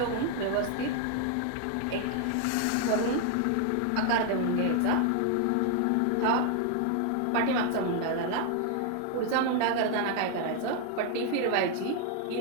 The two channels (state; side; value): different; both; correlation 0.00